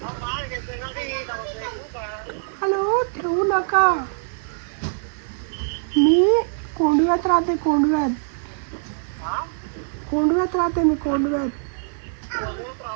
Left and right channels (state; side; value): silent; left; digital silence